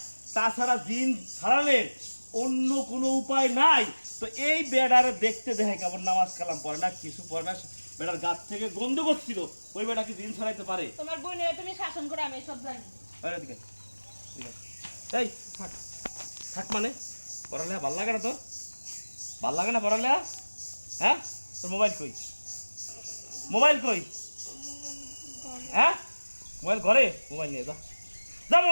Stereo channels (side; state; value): both; inverted; correlation -1.00